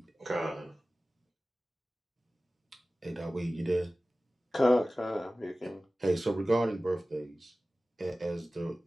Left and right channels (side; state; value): both; normal; correlation 0.96